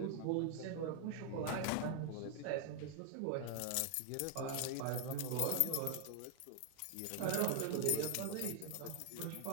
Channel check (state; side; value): different; both; correlation 0.00